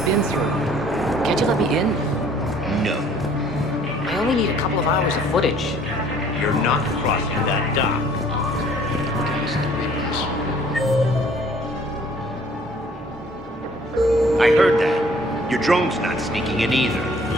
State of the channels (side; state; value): both; normal; correlation 0.56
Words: been through. Can't you let me in? No, I only need a couple of hours of footage. you're not crossing that dock. I heard that. Your drone's not sneaking in either.